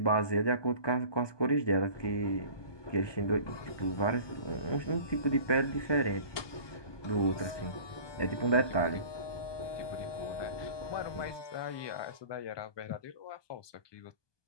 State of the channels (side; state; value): right; late; 1.2 ms